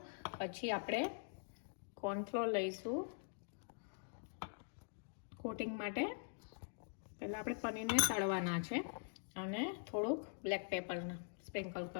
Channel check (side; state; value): right; silent; digital silence